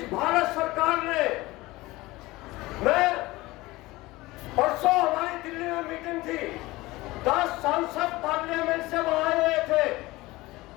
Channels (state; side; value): quieter; right; 19.9 dB